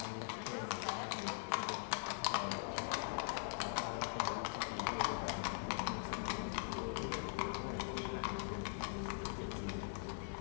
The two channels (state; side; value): silent; right; digital silence